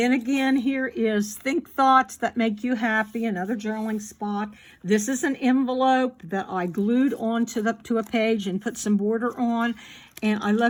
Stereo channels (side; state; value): both; identical; correlation 1.00